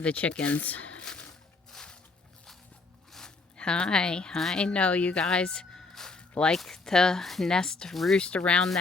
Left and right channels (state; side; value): quieter; right; 3.8 dB